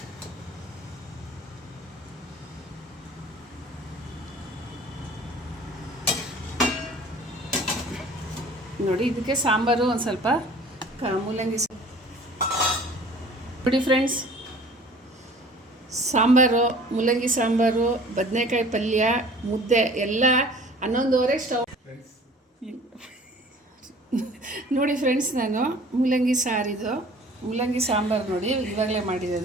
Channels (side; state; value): both; normal; correlation 0.48